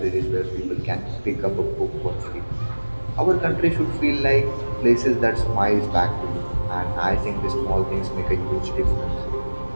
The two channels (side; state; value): both; inverted; correlation -1.00